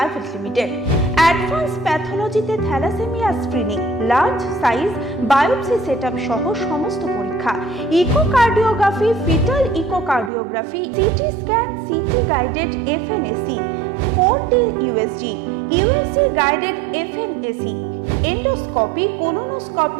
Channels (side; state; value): left; drops out; at 10.3 s